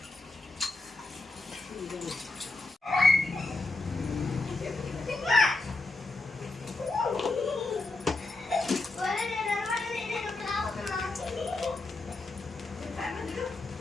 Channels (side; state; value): right; quieter; 3.1 dB